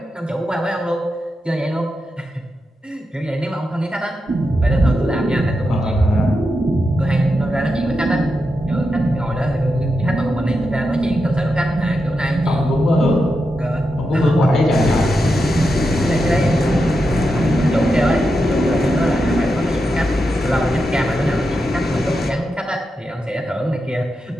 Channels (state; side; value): normal; both; correlation 0.87